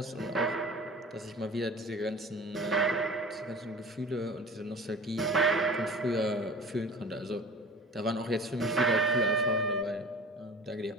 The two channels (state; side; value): normal; both; correlation 0.40